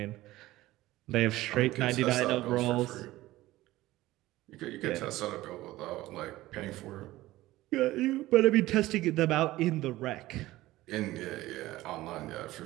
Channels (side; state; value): left; quieter; 17.0 dB